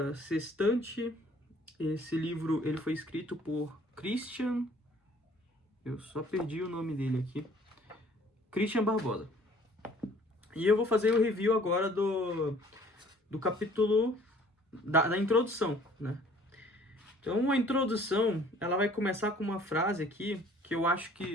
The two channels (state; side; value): normal; both; correlation 0.55